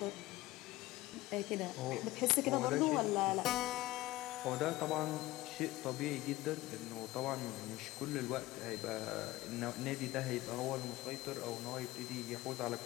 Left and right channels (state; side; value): quieter; right; 18.2 dB